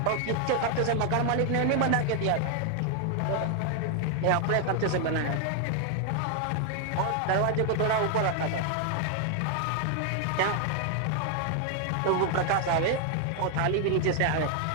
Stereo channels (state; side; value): different; both; correlation 0.00